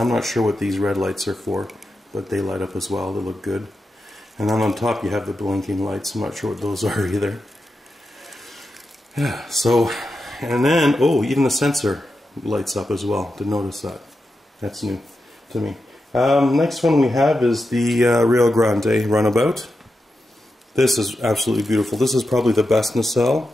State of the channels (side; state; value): both; normal; correlation 0.89